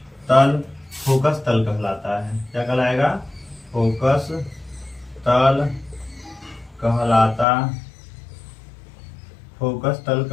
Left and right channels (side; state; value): right; drops out; at 7.5 s